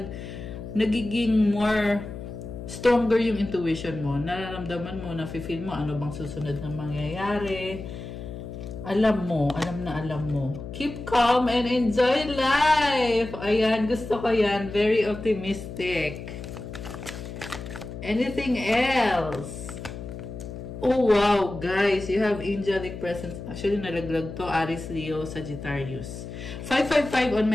nagiging more stronger yung intuition mo. Nararamdaman mo, nafe-feel mo ano bang susunod na mangyayari. Alam mo. Keep calm and enjoy life. Ayan, gusto ko yan. Very optimistic. Anything else? Oh, wow, guys. You have angelic presence. Actually, nalaglag to. Aries, Leo, Sagittarius. 555 on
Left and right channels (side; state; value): left; noise; hum, 10 dB below the sound